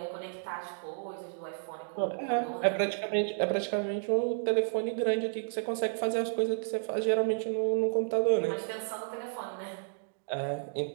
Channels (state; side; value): silent; left; digital silence